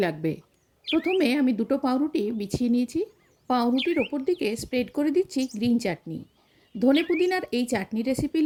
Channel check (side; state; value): both; identical; correlation 1.00